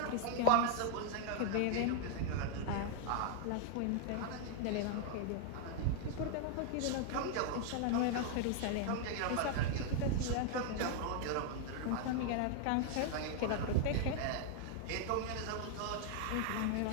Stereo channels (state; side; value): different; both; correlation -0.01